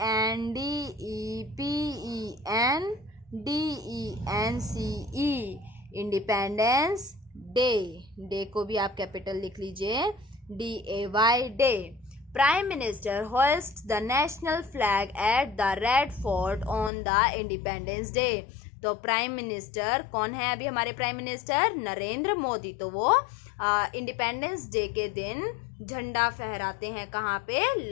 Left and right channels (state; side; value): drops out; right; at 16.9 s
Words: independence day. Day को भी आप capital लिख लीजिए, DAY day. Prime minister host the national flag at the red fort on the independence day. तो prime minister कौन है अभी हमारे प्राइम मिनिस्टर? नरेंद्र मोदी। तो वो इंडिपेंडेंस डे के दिन झंडा फहराते हैं कहाँ पे?